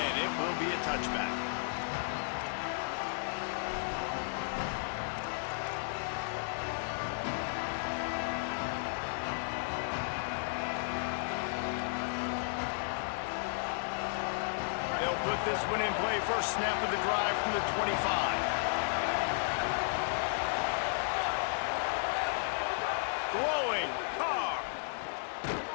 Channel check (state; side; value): silent; right; digital silence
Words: it will be a touchback. They'll put this one in play. First snap of the drive from the 25. Throwing, Carr.